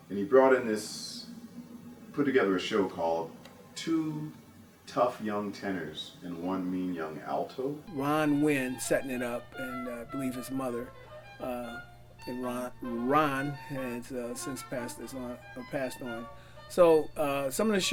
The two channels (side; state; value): both; identical; correlation 1.00